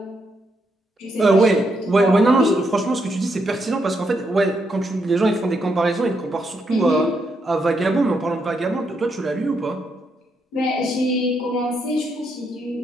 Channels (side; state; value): both; normal; correlation 0.79